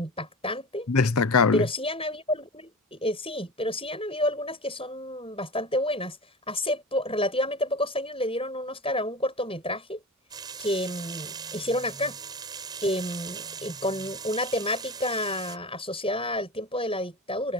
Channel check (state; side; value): normal; both; correlation 0.30